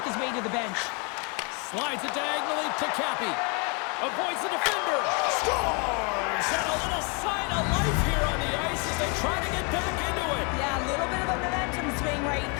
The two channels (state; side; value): quieter; right; 33.5 dB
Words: his way to the bench. Slides it diagonally to Cappy. Avoids the defender. Scores! And a little sign of life here on the ice as they try to get back into it. Yeah, a little bit of a momentum swing right